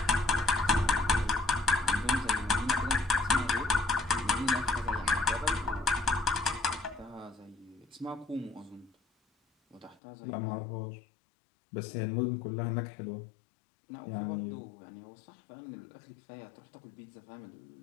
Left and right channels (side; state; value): right; drops out; at 10.0 s